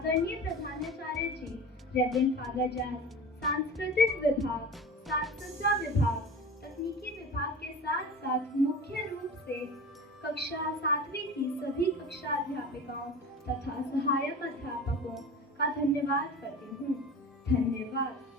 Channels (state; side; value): normal; both; correlation 0.34